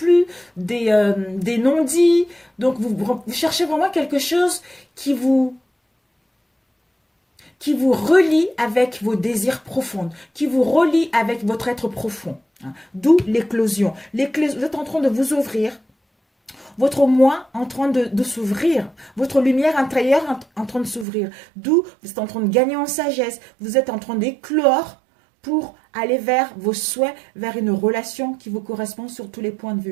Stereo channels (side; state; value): left; drops out; at 21.1 s